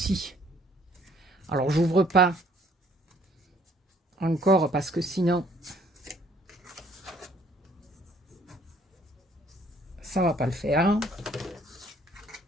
Alors, j'ouvre pas encore parce que sinon, ça va pas le faire.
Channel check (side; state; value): both; normal; correlation 0.61